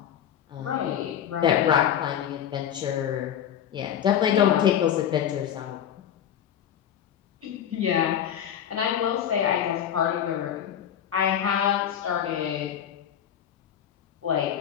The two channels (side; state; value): right; quieter; 9.6 dB